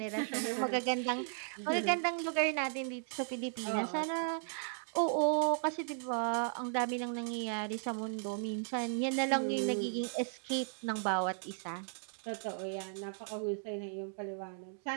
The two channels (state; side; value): silent; left; 54 dB below the other